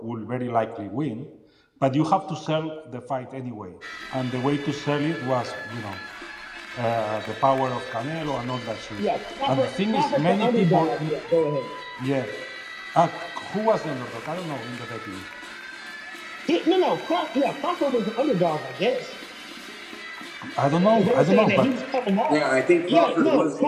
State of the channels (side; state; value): both; identical; correlation 1.00